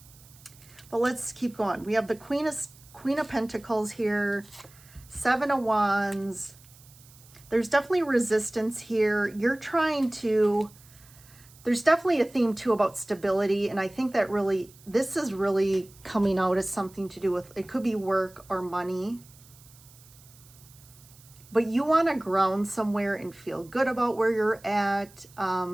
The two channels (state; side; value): noise; right; hiss, 24 dB below the sound